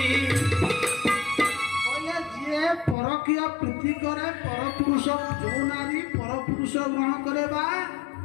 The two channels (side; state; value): right; drops out; at 3.0 s